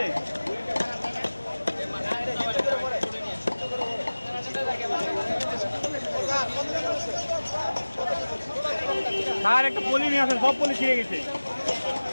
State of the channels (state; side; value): inverted; both; correlation -1.00